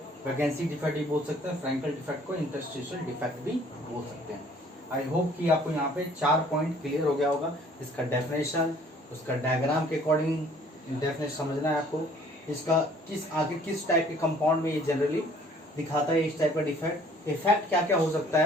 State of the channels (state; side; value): normal; both; correlation 0.56